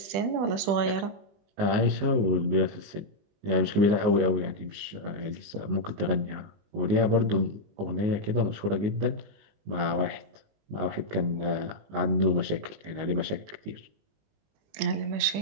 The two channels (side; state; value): left; late; 19 ms